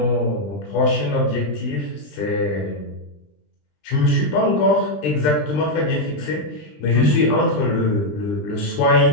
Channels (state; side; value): late; right; 20 ms